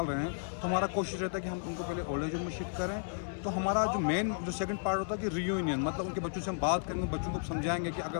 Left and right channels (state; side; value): silent; right; 55 dB below the other